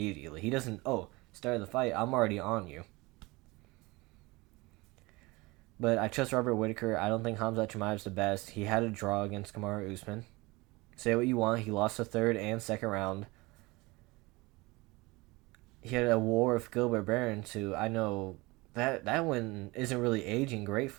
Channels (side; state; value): left; quieter; 23.2 dB